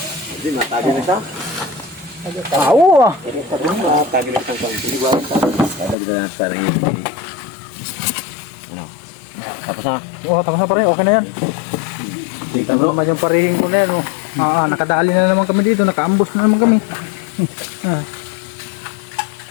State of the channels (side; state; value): right; drops out; at 6.0 s